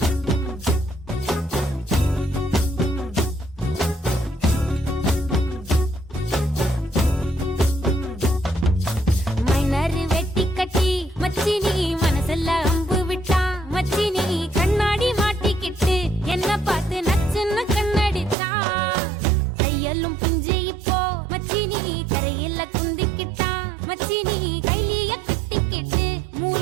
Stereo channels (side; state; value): left; drops out; at 18.4 s